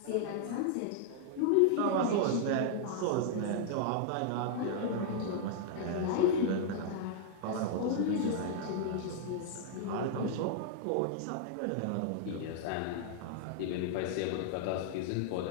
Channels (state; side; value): different; both; correlation -0.01